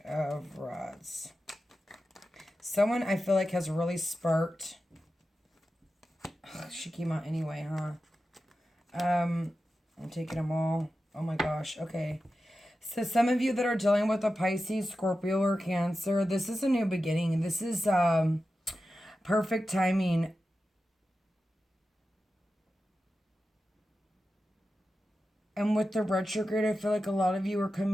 of Rods. Someone I feel like has really sparked. She came out anyway, huh? I'm taking them all. Oh my gosh. Okay. So some of you that are dealing with a Pisces, Scorpio, or Cancer, this is a new beginning. This is perfect timing. And with the retrograde, I feel like a lot of you are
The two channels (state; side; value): normal; both; correlation 0.92